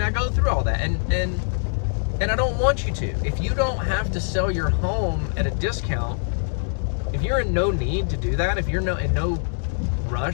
I go through all that. And I don't want you to. If you don't have to sell your home at a discount, if you're in no need to do that, if you're in no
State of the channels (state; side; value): silent; right; digital silence